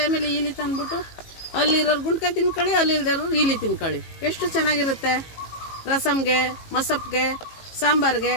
ಈಲಿ ತಂದ್ಬಿಟ್ಟು ಅಲ್ಲಿರೋರು ಗುಂಟ್ಕಾಯಿ ತಿನ್ಕೊಳ್ಳಿ, ಅಲ್ಲಿಲ್ದಿರೋರು ಈಲಿ ತಿನ್ಕೊಳ್ಳಿ. ಎಷ್ಟು ಚೆನ್ನಾಗಿರುತ್ತೆ. ರಸಮ್ಗೆ, ಮಸಪ್ಗೆ, ಸಾಂಬಾರ್ಗೆ,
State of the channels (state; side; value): late; right; 18 ms